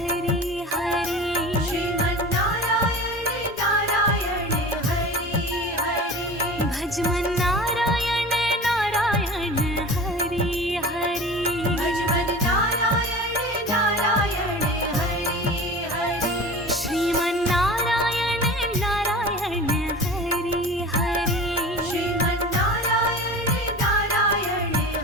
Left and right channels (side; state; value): both; normal; correlation 0.36